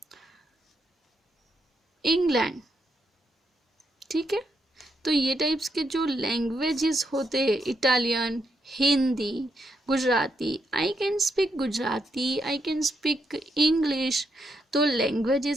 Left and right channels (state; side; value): normal; both; correlation 0.80